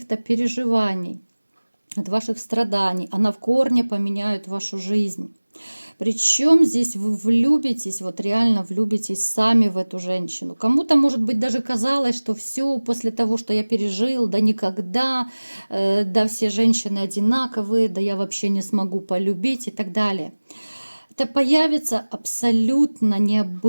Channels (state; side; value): inverted; both; correlation -1.00